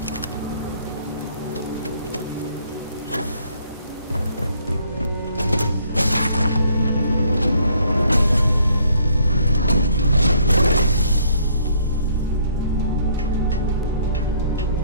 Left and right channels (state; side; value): inverted; both; correlation -0.65